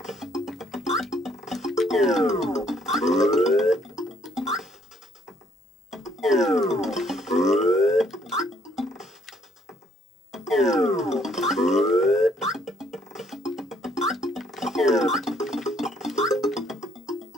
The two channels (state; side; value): normal; both; correlation 0.65